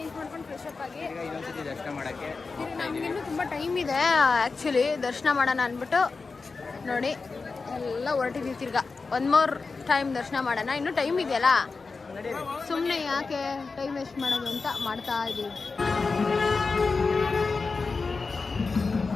ಮಾಡ್ಕೊಂಡು ಫ್ರೆಶ್ ಅಪ್ ಆಗಿ ಈಗ ಇನ್ನೊಂದ್ಸತಿ ದರ್ಶನ ಮಾಡಕ್ಕೆ ನಮ್ಗಿನ್ನೂ ತುಂಬ ಟೈಮ್ ಇದೆ ಆ್ಯಕ್ಚುಲಿ ದರ್ಶನ ಮಾಡೋಣ ಅಂದ್ಬಿಟ್ಟು ನೋಡಿ ಎಲ್ಲ ಹೊರಟಿದ್ದೀವಿ. ತಿರ್ಗಾ ಒನ್ ಮೋರ್ ಟೈಮ್ ದರ್ಶನ ಮಾಡೋಣ, ಇನ್ನೂ ಟೈಮ್ ಇದೆಯಲ್ಲ, ಸುಮ್ಮನೆ ಯಾಕೆ ಟೈಮ್ ವೇಸ್ಟ್ ಮಾಡೋದು ಅಂತ ಮಾಡ್ತಾ ಇದ್ದೀವಿ.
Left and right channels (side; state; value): right; quieter; 4.3 dB